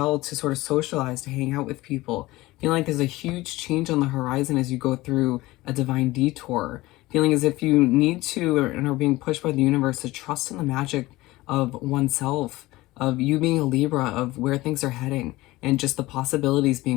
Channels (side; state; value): right; quieter; 19.0 dB